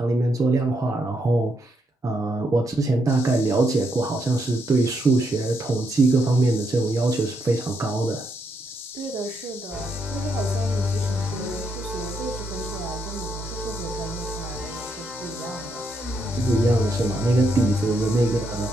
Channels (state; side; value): normal; both; correlation 0.78